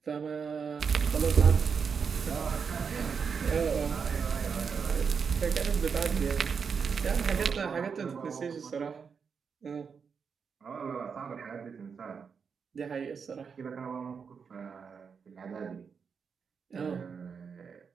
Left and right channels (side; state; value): left; quieter; 6.1 dB